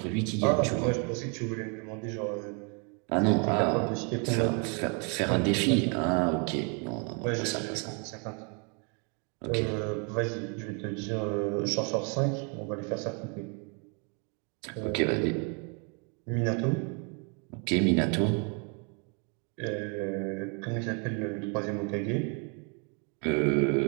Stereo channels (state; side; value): quieter; left; 36.0 dB